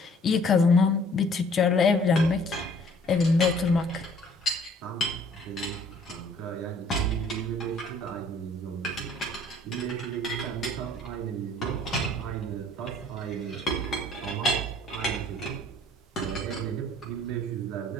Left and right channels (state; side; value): normal; both; correlation 0.56